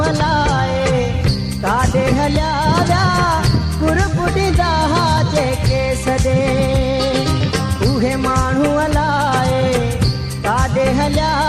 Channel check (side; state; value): both; identical; correlation 1.00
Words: अलाए काॾे हलिया विया कुरबुॾींदा जेके सॾे उहे माण्हू अलाए काॾे हलिया